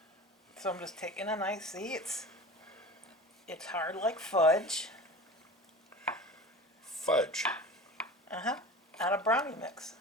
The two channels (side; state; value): both; normal; correlation 0.35